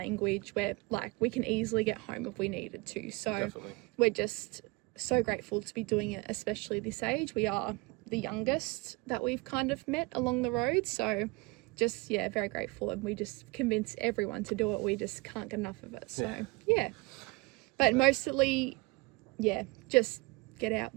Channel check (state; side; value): quieter; left; 25.5 dB